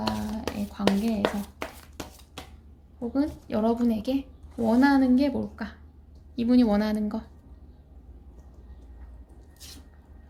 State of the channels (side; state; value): both; identical; correlation 1.00